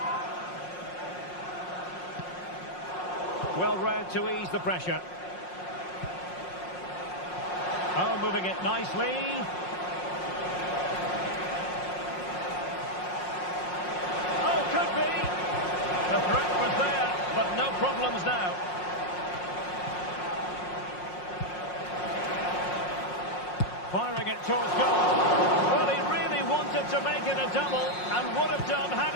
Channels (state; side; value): late; right; 5.5 ms